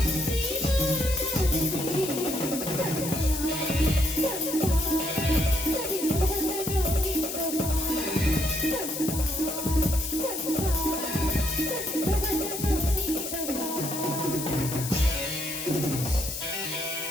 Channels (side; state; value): left; noise; hiss, 6 dB below the sound